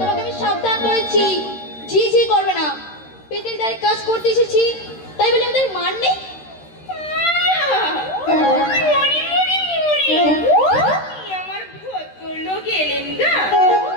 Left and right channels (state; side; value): late; right; 13 ms